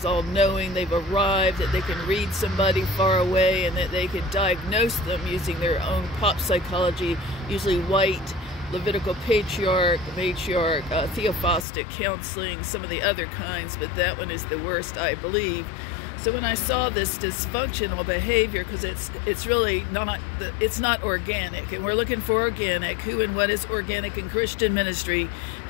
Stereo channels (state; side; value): drops out; right; at 11.7 s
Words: all-knowing, they've arrived, that they can read somebody far away, and that they can diagnose them using their own pop psychology, usually white, Levitical patriarch, matriarch, theophostic counseling, some of the other kinds, but that one is the worst, I believe. So when I saw this dysfunctional behavior, because it's really not, it's not organic, and we're looking for organic. Who and what is organic in Christian ministry?